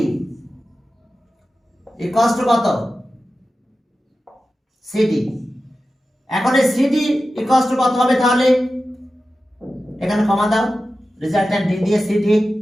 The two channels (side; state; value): both; normal; correlation 0.93